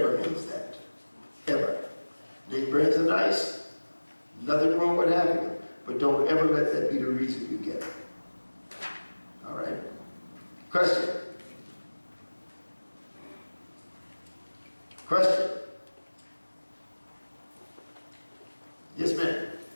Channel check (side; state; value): both; inverted; correlation -1.00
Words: means that. Ever. Name brands are nice. Nothing wrong with having them. But don't ever let that be the reason you get it. All right? Question? Question? Yes, ma'am.